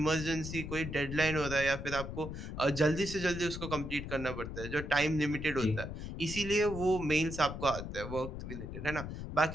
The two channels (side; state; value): left; noise; rumble, 7 dB below the sound